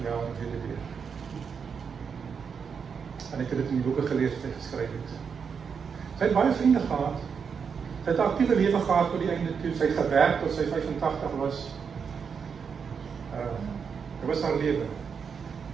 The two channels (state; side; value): quieter; left; 6.3 dB